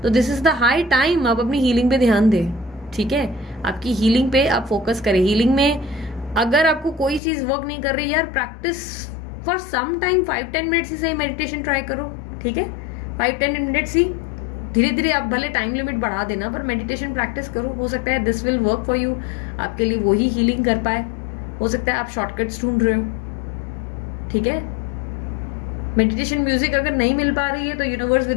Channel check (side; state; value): right; drops out; at 7.2 s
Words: तो this is the high time आप अपनी हीलिंग पे ध्यान दें, ठीक है, आपकी हीलिंग पे आप फोकस करें। हीलिंग में अगर आपको कोई चीज वर्क नहीं कर रही यार, practice for some time, 5-10 minutes ही सही मेडिटेशन ट्राई करो, ठीक है, 5-10 मिनट्स ही, धीरे धीरे आप भले टाइम लिमिट बढ़ा देना पर मेडिटेशन प्रैक्टिस करो। हो सकता है this will work for you, आपके लिए वही हीलिंग कर पाए। हो सकता है आप शॉर्टकट्स ढूंढ रहे हो, ठीक है। मेडिटेशन म्यूजिक अगर नहीं मिल पा रही है तो यूनिवर्स